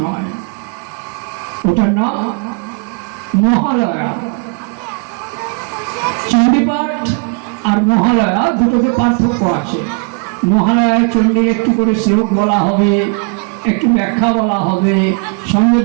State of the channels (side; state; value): left; quieter; 33.3 dB